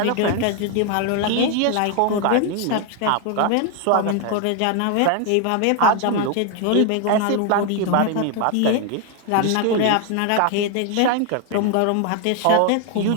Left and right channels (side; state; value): both; different; correlation 0.01